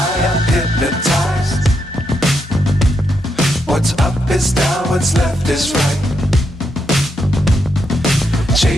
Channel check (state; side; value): normal; both; correlation 0.81